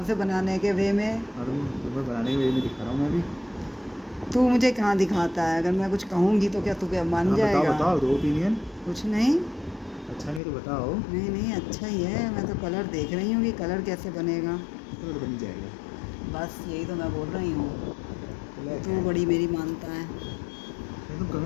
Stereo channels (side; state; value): right; drops out; at 10.4 s